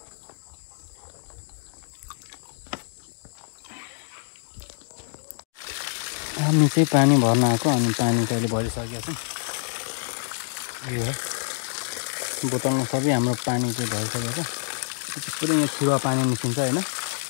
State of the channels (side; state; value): right; silent; digital silence